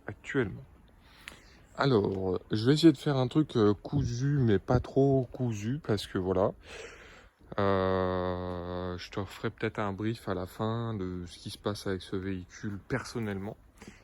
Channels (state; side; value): identical; both; correlation 1.00